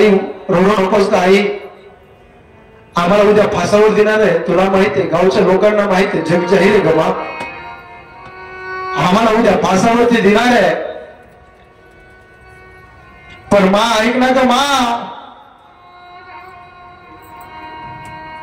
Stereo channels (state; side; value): identical; both; correlation 1.00